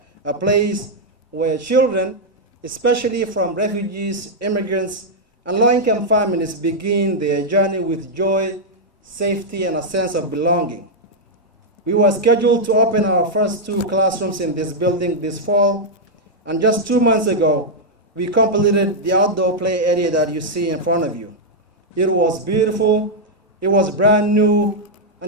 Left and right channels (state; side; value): normal; both; correlation -0.04